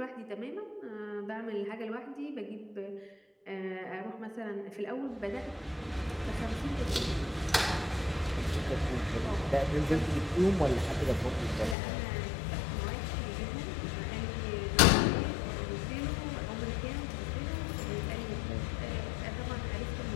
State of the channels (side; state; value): right; drops out; at 11.8 s